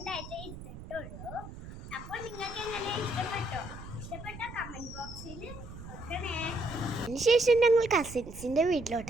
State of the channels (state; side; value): noise; right; rumble, 13 dB below the sound